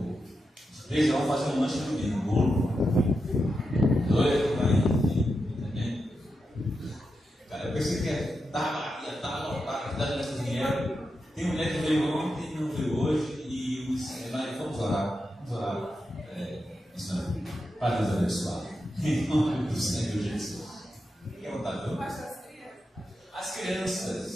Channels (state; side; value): normal; both; correlation 0.87